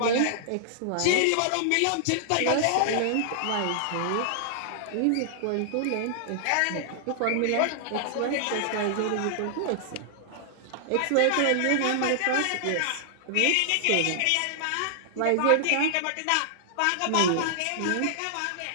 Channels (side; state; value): both; different; correlation -0.01